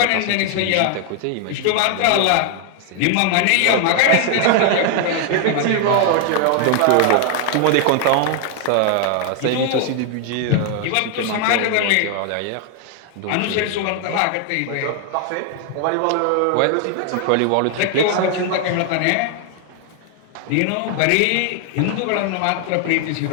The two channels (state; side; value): different; both; correlation 0.00